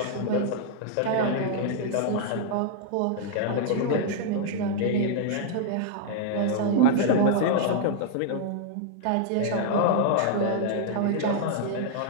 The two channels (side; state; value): both; different; correlation -0.01